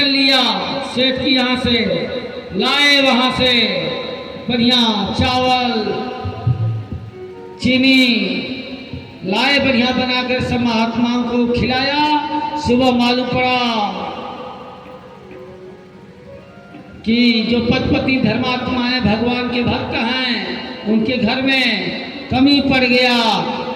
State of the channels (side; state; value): both; identical; correlation 1.00